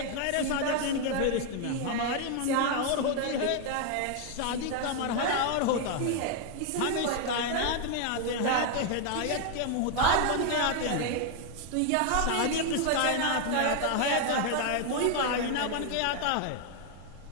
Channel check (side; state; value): both; different; correlation 0.00